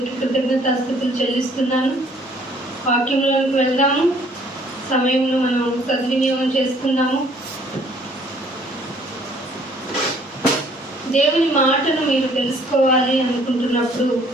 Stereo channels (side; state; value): both; normal; correlation 0.60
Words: కృతజ్ఞతాస్తుతులు చెల్లిస్తున్నాను. వాక్యంలోకి వెళ్దాము. సమయంలో మనం సద్వినియోగం చేసుకుందాము. దేవుని మాటను మీరు తెలుసుకోవాలి అనుకుంటున్నప్పుడు